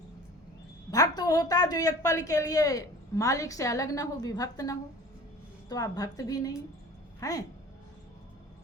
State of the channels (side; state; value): both; normal; correlation 0.43